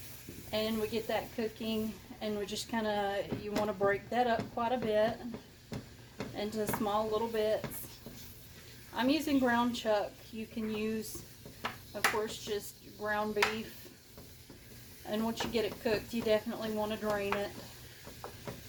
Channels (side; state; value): both; identical; correlation 1.00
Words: and we get that cooking, and we just kind of, you want to break that up quite a bit into small little bits. I'm using ground chuck. You can use, of course, just ground beef. And once you get it cooked, you definitely want to drain it.